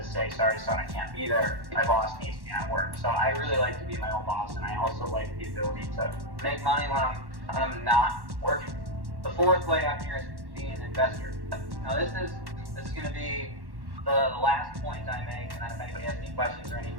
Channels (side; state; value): left; late; 1.1 ms